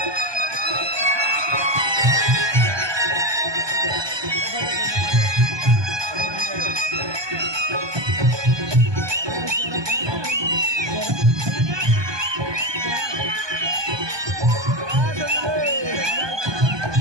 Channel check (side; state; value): left; late; 1.2 ms